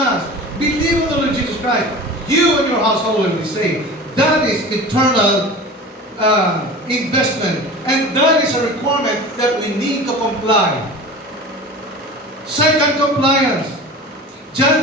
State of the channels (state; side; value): normal; both; correlation 0.35